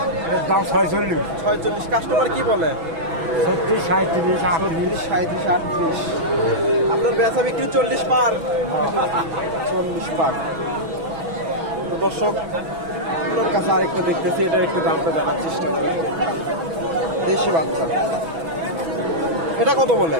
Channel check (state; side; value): late; left; 6.1 ms